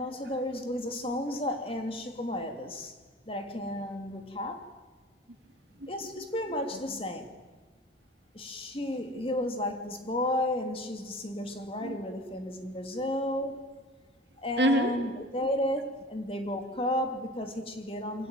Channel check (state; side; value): normal; both; correlation 0.40